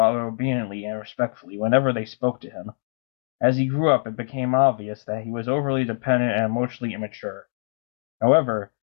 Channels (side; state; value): right; silent; digital silence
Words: obediently and respectfully whenever they spoke to him. As he grew up, it became obvious that he was overly dependent and emotionally immature. However,